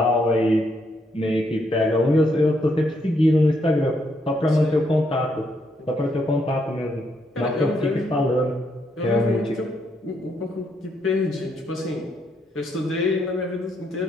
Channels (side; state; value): both; normal; correlation 0.76